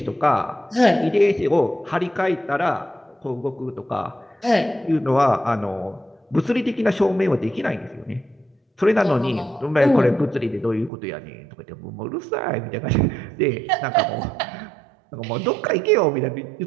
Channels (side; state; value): left; drops out; at 10.9 s